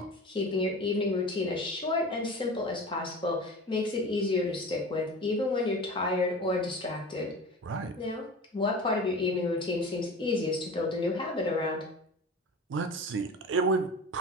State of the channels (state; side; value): normal; both; correlation 0.34